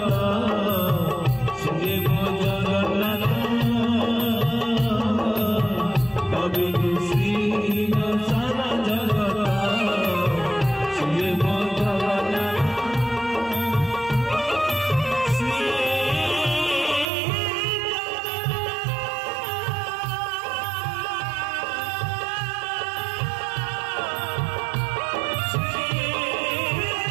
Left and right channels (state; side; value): drops out; left; at 17.1 s